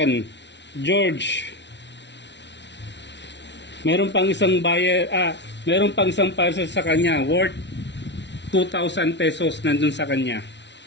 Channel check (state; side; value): late; right; 0.51 ms